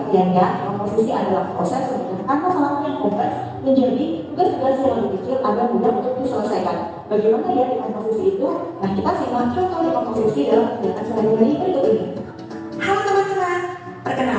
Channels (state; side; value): identical; both; correlation 1.00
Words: komposisi adalah proses memecahkan masalah yang kompleks menjadi tugas-tugas yang lebih kecil agar mudah untuk diselesaikan. Bagaimana ya dekomposisi itu? Nah, kita simak contoh dekomposisi dalam kegiatan sehari-hari berikut ini. Halo teman-teman,